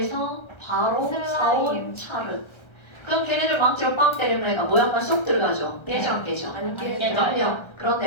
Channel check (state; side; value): late; right; 1.3 ms